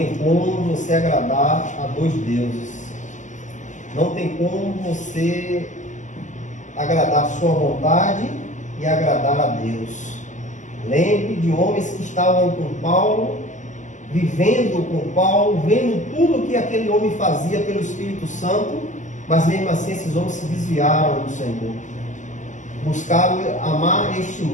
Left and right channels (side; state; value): right; late; 0.36 ms